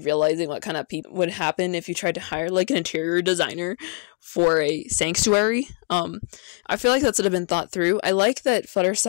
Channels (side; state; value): right; quieter; 29.7 dB